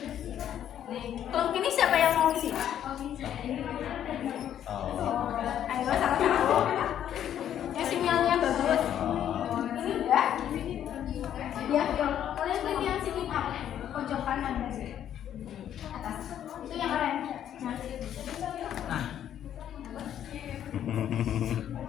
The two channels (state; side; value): quieter; right; 10.3 dB